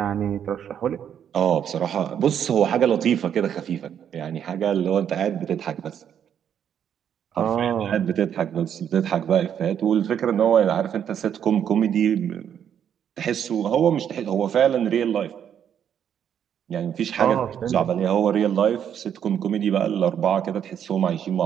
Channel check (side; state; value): left; quieter; 8.9 dB